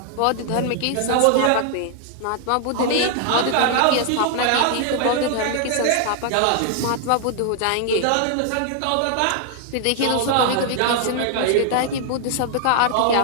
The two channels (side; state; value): both; different; correlation 0.00